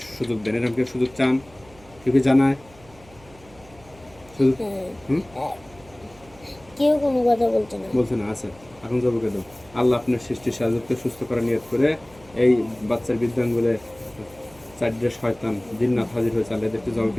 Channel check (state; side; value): noise; right; hum, 25 dB below the sound